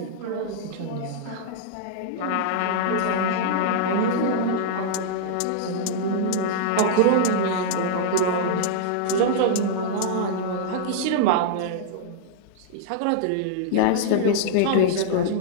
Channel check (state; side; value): different; both; correlation -0.02